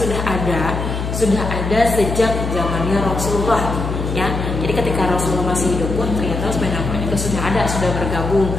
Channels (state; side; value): noise; left; hum, 4 dB below the sound